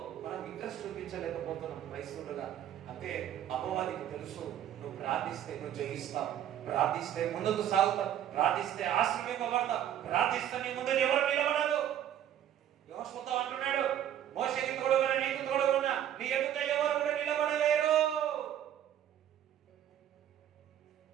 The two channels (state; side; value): quieter; left; 10.7 dB